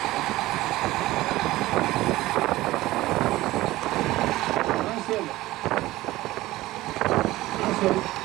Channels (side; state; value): left; quieter; 17.4 dB